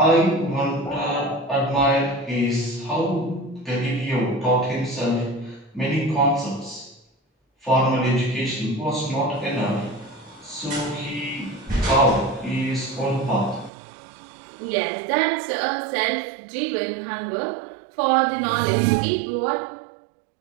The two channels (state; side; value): drops out; left; at 13.7 s